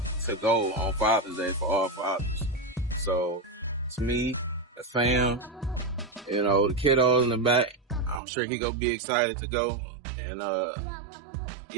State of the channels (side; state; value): left; drops out; at 8.2 s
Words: to go on Father's Day for all fathers. So it's me, the fam, you know, the kiddos in the back. I'm sure he gonna be excited to go. And